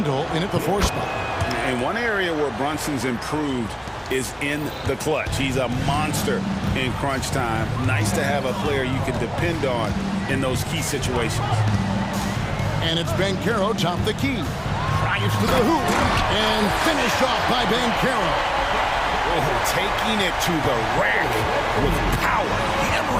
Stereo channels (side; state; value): both; identical; correlation 1.00